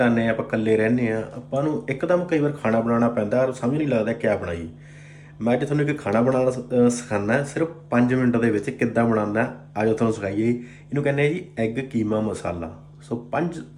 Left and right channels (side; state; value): both; identical; correlation 1.00